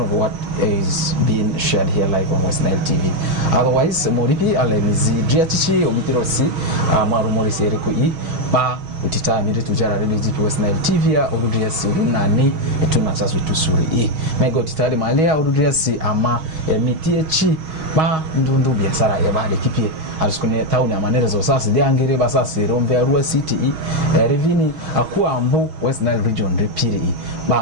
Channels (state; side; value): late; left; 6.3 ms